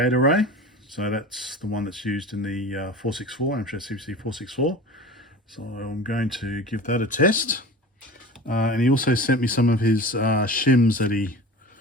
array. So that's the one that's used in the 464, Amstrad CPC 464. So I'm going to give that a test. And he also sent me some of his shims that he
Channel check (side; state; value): both; normal; correlation 0.35